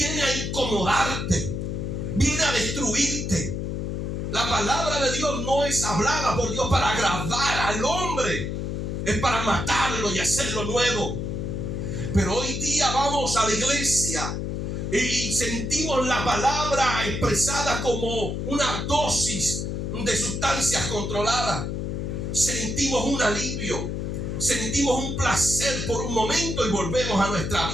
a incomodarte, viene a destruirte. La palabra de Dios no es hablada por Dios para agradar al hombre, es para matarlo y hacerlo nuevo. Pero hoy día vamos a la iglesia y sentimos la palabra expresada como una dosis de sustancias controladas. Sentimos un alivio, sentimos un placer por un momento y volvemos a nuestra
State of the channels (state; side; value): noise; left; hum, 3 dB below the sound